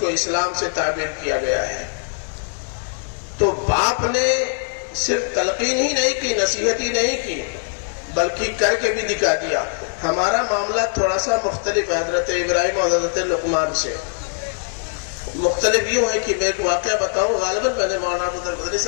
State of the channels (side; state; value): right; silent; 65 dB below the other